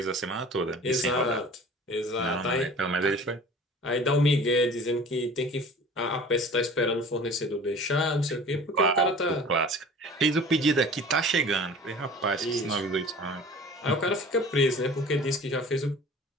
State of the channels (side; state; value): both; normal; correlation 0.43